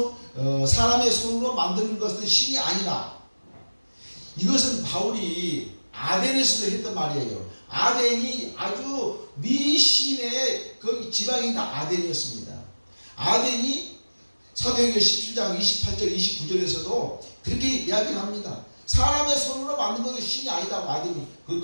사람의 손으로 만드는 것은 신이 아니라. 이것은 바울이 아덴에서도 했던 말이에요. 아덴이 아주 미신의 그 지방이 다 아덴이었습니다. 아덴이 사도행전 17장 28절 29절에서도 그렇게 이야기를 합니다. 사람의 손으로 만든 것은 신이 아니다고 아덴이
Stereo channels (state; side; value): inverted; both; correlation -1.00